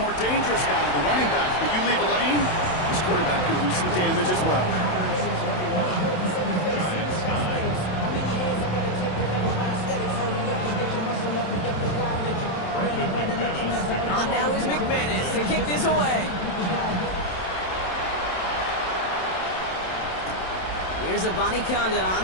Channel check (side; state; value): right; late; 27 ms